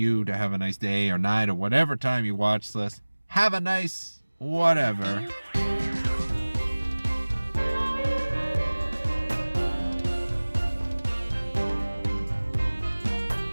to have a nice day or night or whatever time you watch this. Have a nice whatever.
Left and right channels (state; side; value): inverted; both; correlation -1.00